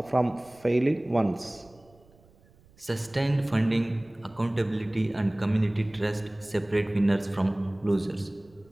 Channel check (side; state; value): right; noise; rumble, 28 dB below the sound